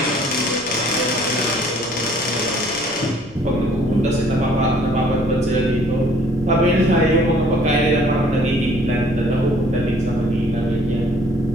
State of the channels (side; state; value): left; noise; rumble, 23 dB below the sound